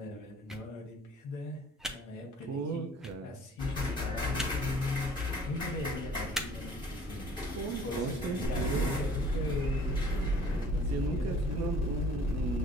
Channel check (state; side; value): normal; both; correlation 0.53